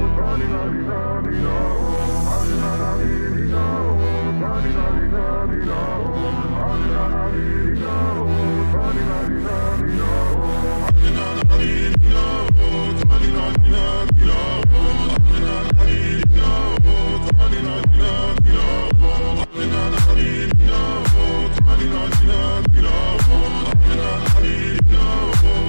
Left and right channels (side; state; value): both; inverted; correlation -1.00